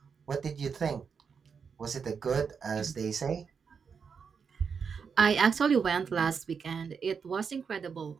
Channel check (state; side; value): quieter; left; 6.1 dB